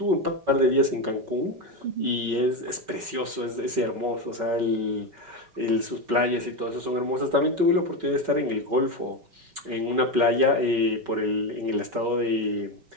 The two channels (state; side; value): late; left; 5.3 ms